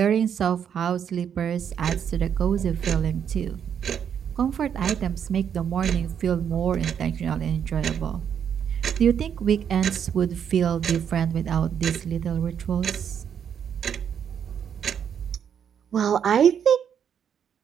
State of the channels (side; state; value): left; quieter; 8.2 dB